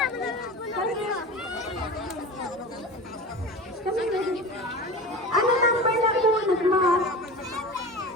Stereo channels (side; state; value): both; normal; correlation 0.32